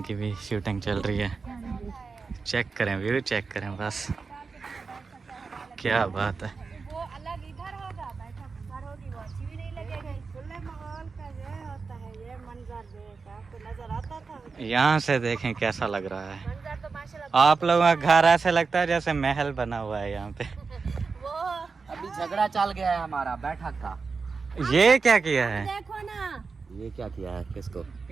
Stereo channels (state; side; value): quieter; left; 4.7 dB